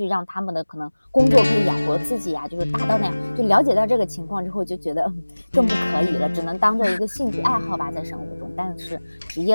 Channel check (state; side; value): inverted; both; correlation -1.00